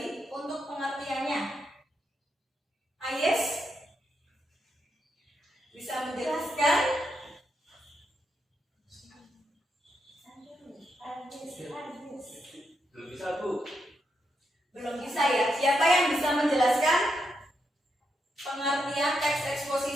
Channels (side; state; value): both; normal; correlation 0.82